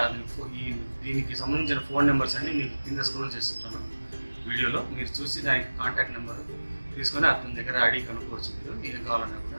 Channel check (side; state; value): both; inverted; correlation -1.00